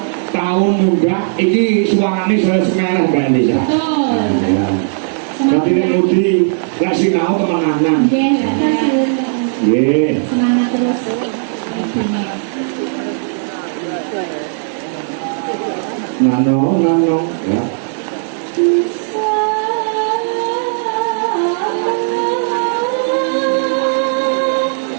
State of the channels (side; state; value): left; silent; 56 dB below the other